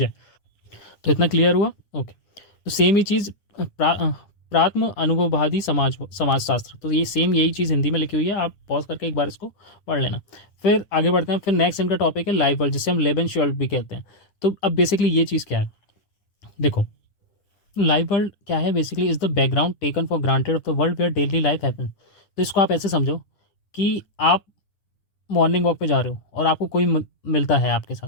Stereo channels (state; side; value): late; right; 9.8 ms